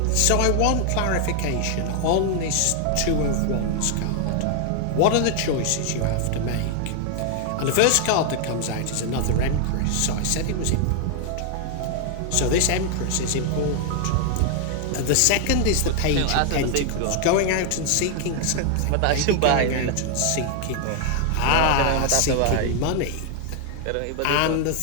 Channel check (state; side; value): different; both; correlation 0.00